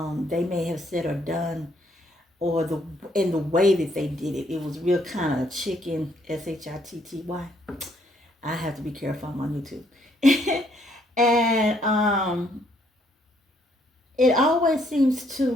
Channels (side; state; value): both; normal; correlation 0.69